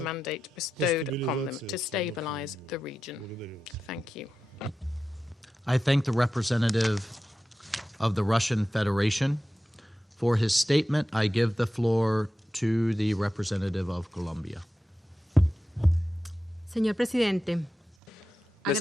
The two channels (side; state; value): both; normal; correlation 0.92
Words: mandate bestowed upon them to stabilise the region. Thank you. I thank the representative of the Russian Federation. For his statement, I give the floor to the representative of Colombia. Señor Presidente, Mr.